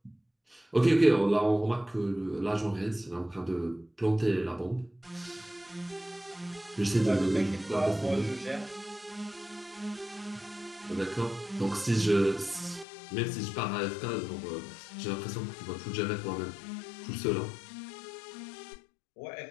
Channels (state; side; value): drops out; right; at 12.9 s